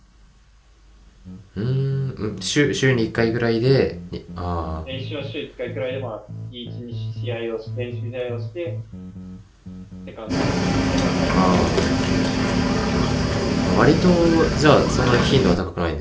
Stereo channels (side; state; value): both; identical; correlation 1.00